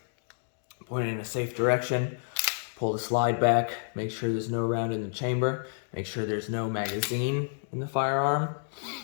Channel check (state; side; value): silent; right; digital silence